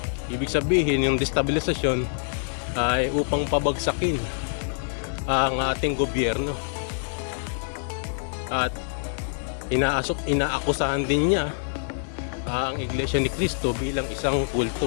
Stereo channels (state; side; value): silent; right; digital silence